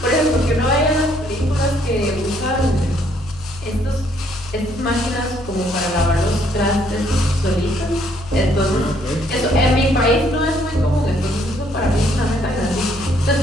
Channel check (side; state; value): left; noise; hum, 17 dB below the sound